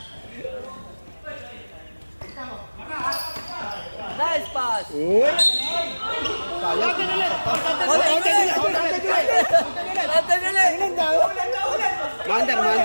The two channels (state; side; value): inverted; both; correlation -1.00